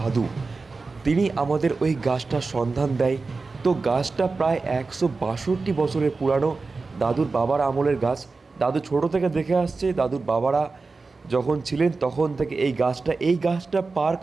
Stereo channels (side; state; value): left; quieter; 4.0 dB